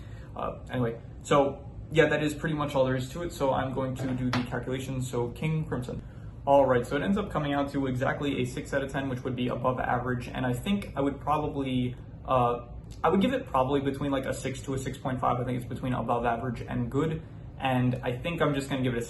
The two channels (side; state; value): both; identical; correlation 1.00